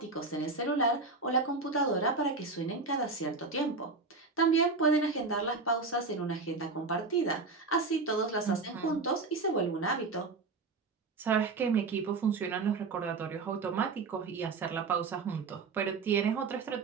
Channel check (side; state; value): left; quieter; 4.1 dB